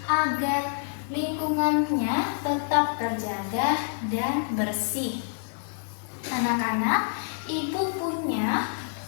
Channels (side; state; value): right; silent; digital silence